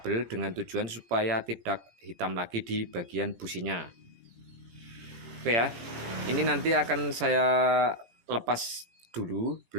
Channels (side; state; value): left; late; 17 ms